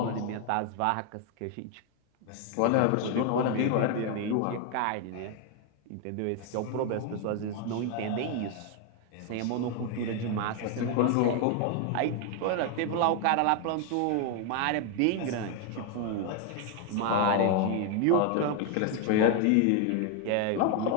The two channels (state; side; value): different; both; correlation 0.01